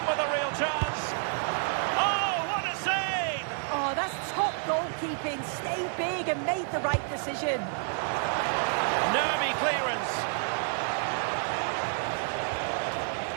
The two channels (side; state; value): left; silent; 55 dB below the other